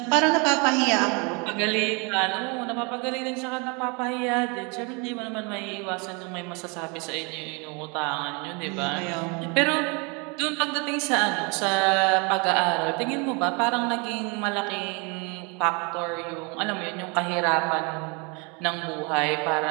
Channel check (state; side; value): quieter; left; 31.5 dB